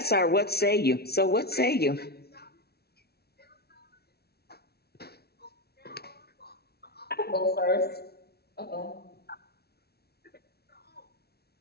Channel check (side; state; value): right; late; 0.46 ms